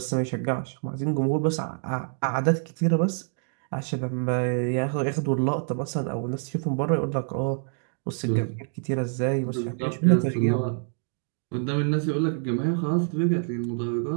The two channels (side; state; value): left; silent; 57 dB below the other